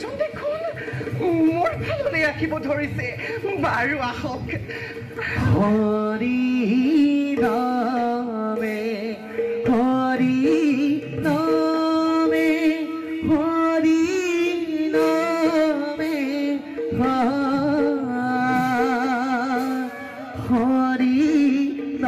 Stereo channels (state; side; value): identical; both; correlation 1.00